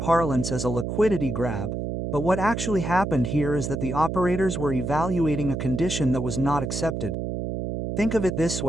as a liquidity grab, but what actually happened here is that the operators were evaluating a condition that was not accepted. Think of it this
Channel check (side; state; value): right; noise; hum, 3 dB below the sound